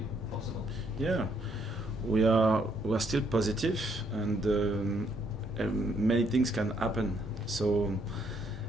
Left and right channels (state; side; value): normal; both; correlation 0.71